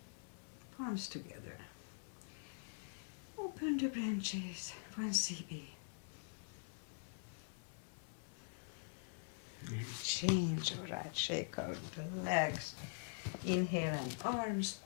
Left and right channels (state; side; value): silent; right; digital silence